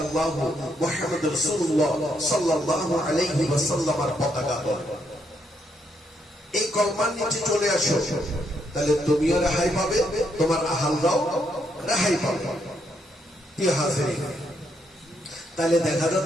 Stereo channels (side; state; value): both; normal; correlation 0.76